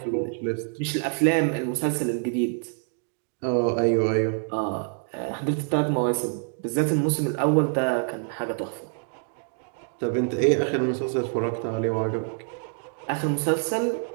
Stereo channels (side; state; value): left; silent; 61 dB below the other